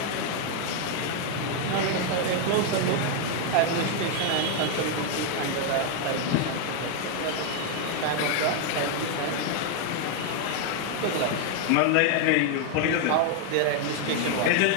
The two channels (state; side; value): different; both; correlation 0.00